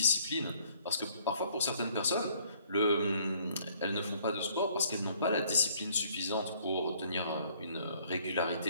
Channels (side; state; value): both; inverted; correlation -0.61